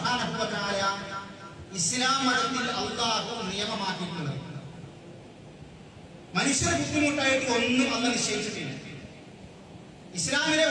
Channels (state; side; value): identical; both; correlation 1.00